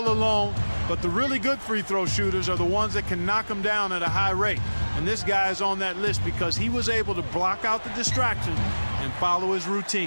alone. But the really good free throw shooters are the ones that can knock them down at a high rate. And this guy is on that list because he was able to block out the distraction and follow his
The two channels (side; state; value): both; inverted; correlation -1.00